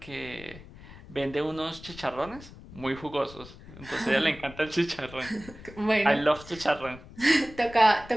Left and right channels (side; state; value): left; noise; rumble, 18 dB below the sound